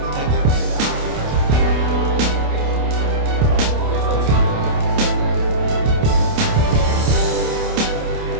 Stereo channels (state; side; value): late; left; 28 ms